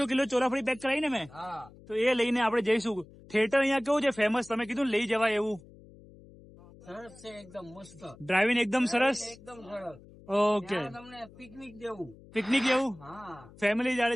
કિલો ચોળાફળી પેક કરાવી ને મેં તો એ લઈને આપણે જઈશું. થિયેટર અહીંયા કેવું છે ફેમસ? તમે કીધું લઈ જવાય એવું. સરસ છે, એકદમ મસ્ત. ડ્રાઇવિંગ એકદમ સરસ. એકદમ સરસ. ઓકે, તમને પિકનિક જેવું. પિકનિક જેવું. હા, ફેમિલી જયારે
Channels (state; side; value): noise; left; hum, 22 dB below the sound